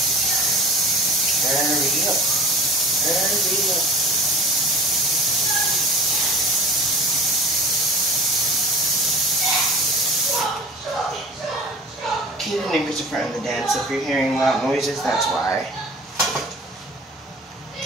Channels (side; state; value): both; normal; correlation 0.40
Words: Hurry up. Keep the neighbors in front of the dance. If you're hearing loud noises, that's why.